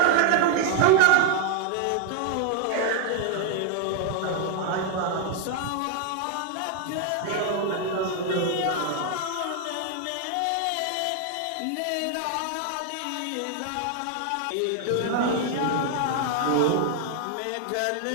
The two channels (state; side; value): different; both; correlation 0.00